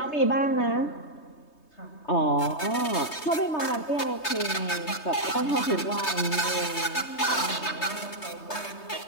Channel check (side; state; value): right; late; 3.2 ms